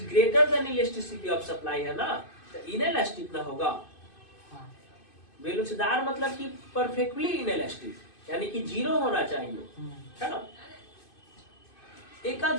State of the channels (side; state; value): right; late; 2.5 ms